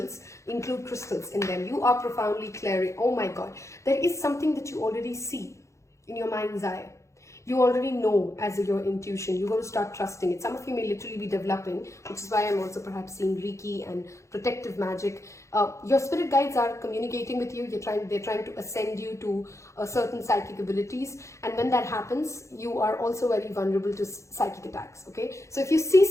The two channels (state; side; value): late; right; 0.14 ms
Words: include crystals in them. You are profoundly clearing. Oh my God, there is something that you already see in your mind's eye. You already know as your intuition. You're going to start trusting it. Some of you may literally be developing, which is why I'm also perhaps seeing Reiki and protective magic. Your spirit guides are communicating with you. They're trying to ascend you to certain psychic abilities. And when that happens, you are also very vulnerable to psychic attacks. Okay. So if you see